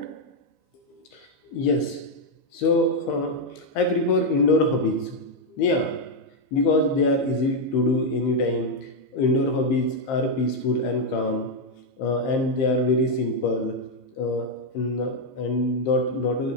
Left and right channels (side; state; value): right; late; 15 ms